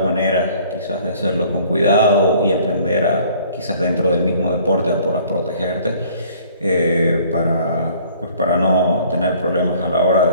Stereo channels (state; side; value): inverted; both; correlation -0.55